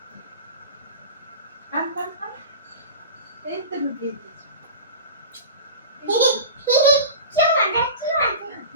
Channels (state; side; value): inverted; both; correlation -0.33